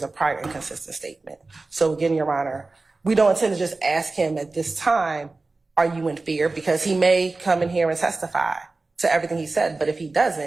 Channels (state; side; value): quieter; left; 3.5 dB